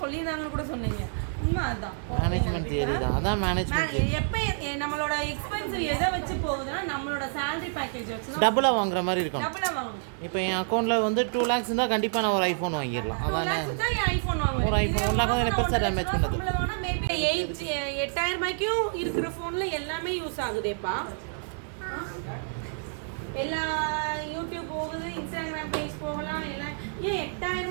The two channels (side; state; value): left; silent; digital silence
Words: கூட சொன்னீங்க, உண்மை அதுதான். மேனேஜ்மென்ட் தியரி தான், அதான் மேனேஜ்மென்ட். எப்போ நம்மளோட எக்ஸ்பென்சிவ் எதை வச்சு போகுதுன்னா நம்மளோட சேலரி பேக்கேஜ் வச்சு டபுளா வாங்குற மாதிரி இருக்கும். டபுளா வாங்கணும். இப்போ என் அக்கௌண்ட்ல வந்து 2 lakhs இருந்தா கண்டிப்பா நான் ஒரு ஐபோன் வாங்கிடலாம். அதானே ஐபோன் வாங்குவேன். ஒரு ஐபோன் 1 lakh வந்து பெருசா டேமேஜ் பண்ணது. மேபி 8,000 ரூபாய்க்கும் இருக்கிற ஃபோன்ல எல்லாமே யூஸ் ஆகுதேப்பா. எல்லா யூடியூப் போகுது, இன்ஸ்டாகிராம் பேஜ் போகலாம். எல்லாம் ஏன் 8,000